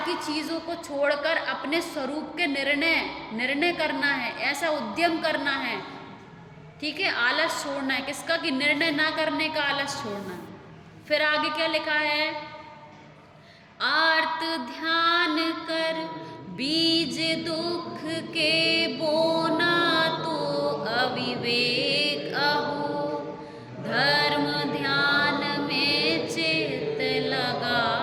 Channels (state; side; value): identical; both; correlation 1.00